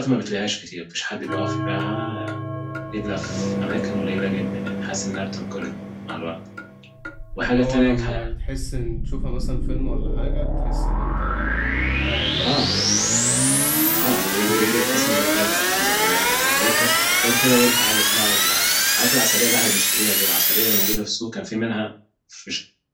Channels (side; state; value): both; identical; correlation 1.00